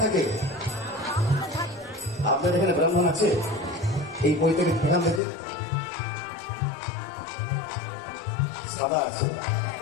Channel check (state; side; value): drops out; right; at 5.2 s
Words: থাকে? আপনাদের এখানে ব্রাহ্মণ আছে? এই বই থেকে এখান থেকে সাদা আছে।